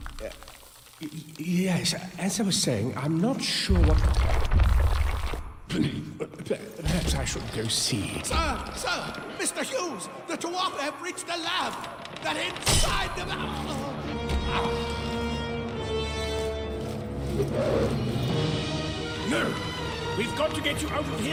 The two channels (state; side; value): identical; both; correlation 1.00